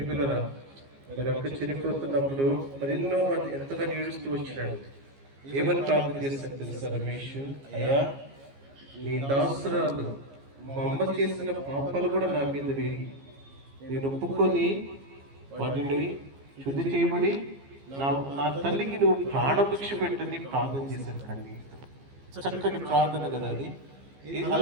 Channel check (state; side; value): late; left; 15 ms